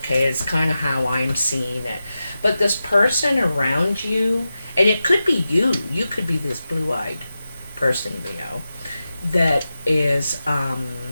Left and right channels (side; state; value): both; inverted; correlation -0.92